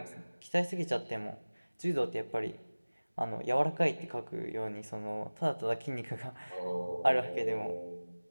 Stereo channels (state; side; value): inverted; both; correlation -1.00